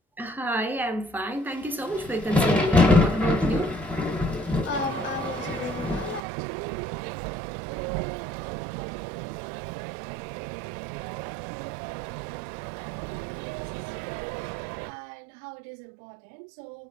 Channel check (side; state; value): left; drops out; at 6.2 s